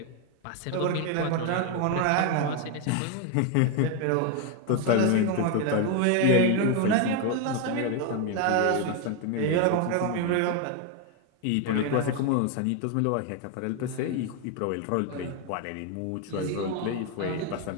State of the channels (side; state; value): both; different; correlation 0.01